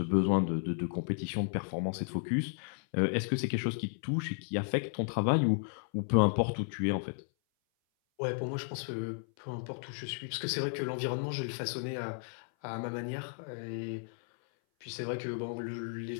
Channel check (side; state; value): right; silent; 55 dB below the other